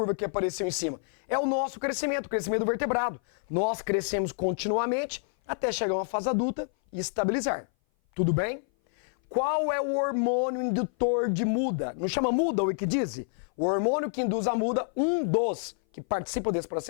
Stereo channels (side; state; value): right; silent; 57 dB below the other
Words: que apareceu em cima? É o nosso crescimento, o crescimento do vertebrado. Nós crescemos continuamente até chegar a uma fase adulta e estabilizar. Tudo bem? Qual é o hormônio indutor de muda? Não chama muda o equidise? O hormônio que induz a muda, um dos que participa desse